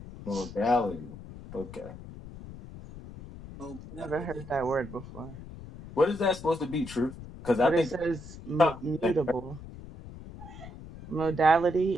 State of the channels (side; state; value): left; noise; rumble, 14 dB below the sound